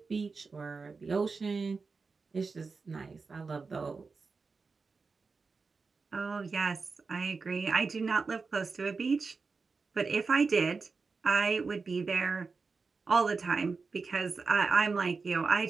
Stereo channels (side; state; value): left; quieter; 4.5 dB